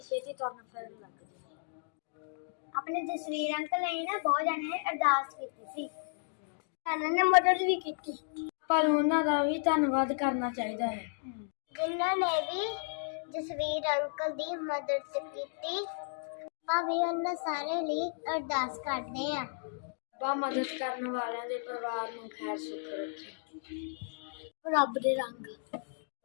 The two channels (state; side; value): silent; right; digital silence